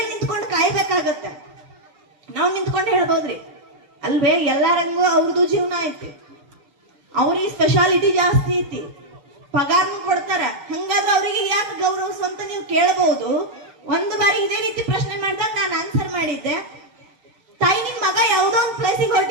ನಿಂತ್ಕೊಂಡು ಕಾಯಬೇಕು ಅವ್ರಿಗೆ ಸ್ಪೆಷಾಲಿಟಿ ಜಾಸ್ತಿ ಐತಿ, ಪಗಾರನು ಕೊಡ್ತಾರ. ಹಂಗಾದ್ರೆ ಅವರಿಗೆ ಯಾಕೆ ಗೌರವಿಸು ಅಂತ ನೀವು ಕೇಳಬಹುದು. ಒಂದು ಬಾರಿ ಇದೇ ರೀತಿ ಪ್ರಶ್ನೆ ಮಾಡಿದಾಗ ನಾನು ಆನ್ಸರ್ ಮಾಡಿದ್ದೆ, ತಾಯಿ ನಿನ್ ಮಗ ಯಾವ್ದೋ ಒಂದು ಪ್ಲೇಸಿಗೆ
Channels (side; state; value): left; late; 7.0 ms